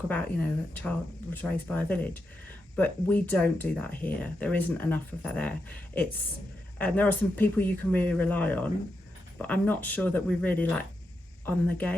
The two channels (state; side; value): normal; both; correlation 0.86